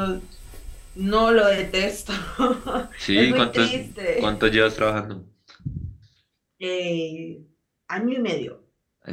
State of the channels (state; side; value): identical; both; correlation 1.00